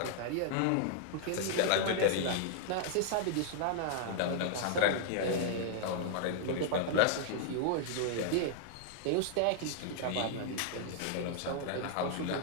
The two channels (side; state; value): both; different; correlation -0.01